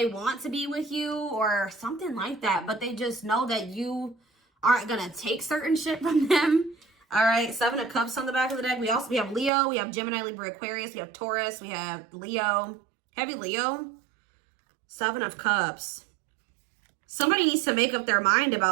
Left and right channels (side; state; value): left; drops out; at 9.5 s